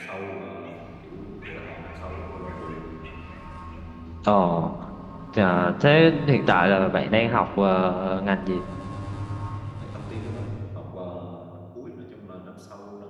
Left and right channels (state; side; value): identical; both; correlation 1.00